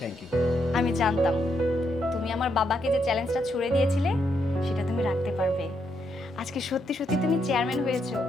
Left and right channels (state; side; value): normal; both; correlation 0.78